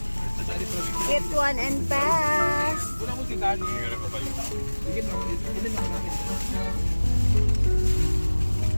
Get one and pass.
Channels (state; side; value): inverted; both; correlation -1.00